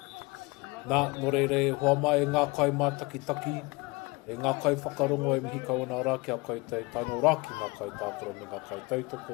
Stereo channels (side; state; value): right; quieter; 25.6 dB